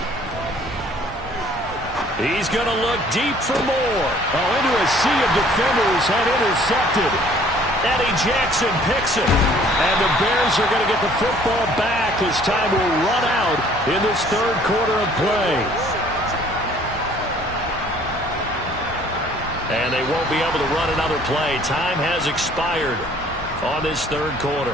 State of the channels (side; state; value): both; normal; correlation 0.56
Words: He's going to look deep for more. Oh, into a sea of defenders and intercepted. Eddie Jackson picks it. And the Bears are going to get the football back as time will run out in this 3rd quarter of play. And they won't be able to run another play. Time has expired on this 3rd quarter.